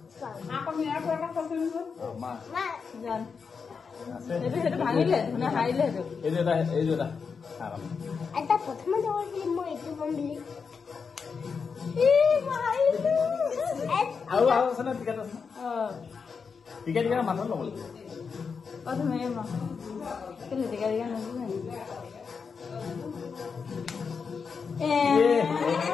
মোৰ আকৌ মেয়াৰ পৰা ফসল মা জান সেইটো ভাঙিলে মানে হাৰিলে এটা প্ৰথমে দৌৰিলে মই এইটো বম বুলি আৰু আছে না টিকেট আছে টিকেট মানুহ ল'ব প্ৰথমে কেলে টিকেট নল'ব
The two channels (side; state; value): right; quieter; 5.6 dB